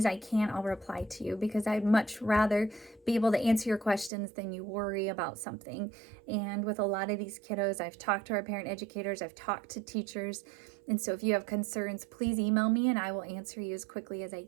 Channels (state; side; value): drops out; left; at 4.1 s